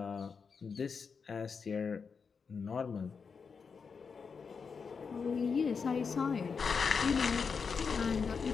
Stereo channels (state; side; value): quieter; right; 5.6 dB